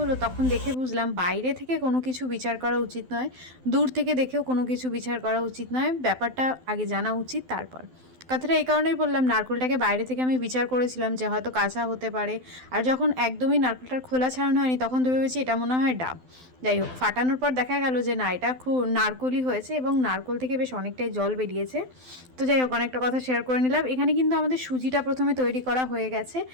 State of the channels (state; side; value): late; left; 12 ms